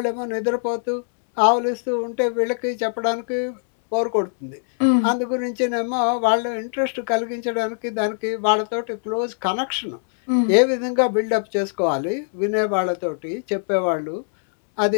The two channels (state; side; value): silent; right; 64 dB below the other